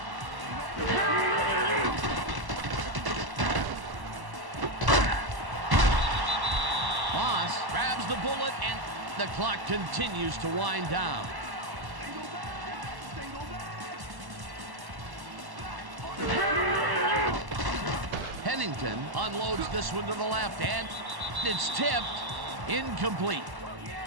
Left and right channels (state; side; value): late; left; 1.1 ms